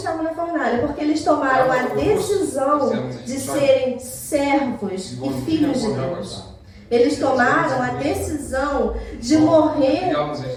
na fornalha? Porque eles tomaram a decisão de serem servos e filhos de Deus. Eles tomaram a decisão de morrer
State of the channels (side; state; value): both; identical; correlation 1.00